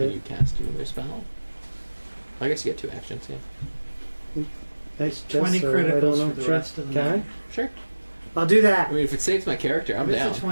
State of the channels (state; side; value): inverted; both; correlation -1.00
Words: get. you cast another spell? I guess you get 2 actions, yeah. I guess 20 so. criticals I don't know. for the Sure. rest of the Can night. Sure. I'll do I that. mean, if it saves my character, I'm What's down. the